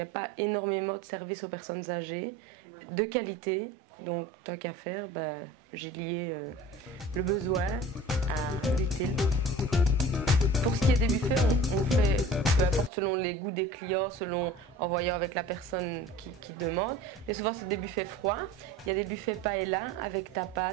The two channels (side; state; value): both; normal; correlation 0.41